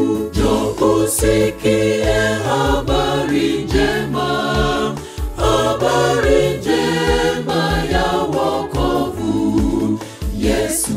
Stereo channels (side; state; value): both; identical; correlation 1.00